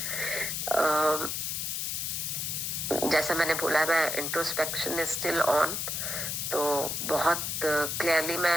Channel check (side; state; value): left; noise; hiss, 2 dB below the sound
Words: जैसा मैंने बोला, मैं इंट्रोस्पेक्शन इज स्टिल ऑन. तो बहुत क्लियरली